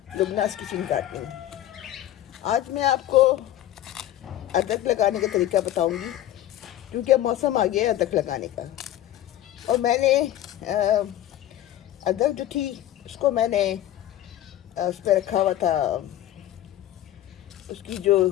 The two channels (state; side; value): quieter; right; 13.1 dB